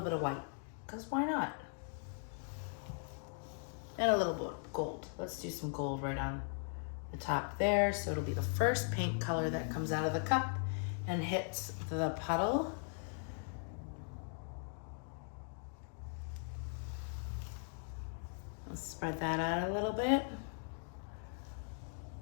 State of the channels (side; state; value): right; silent; 52 dB below the other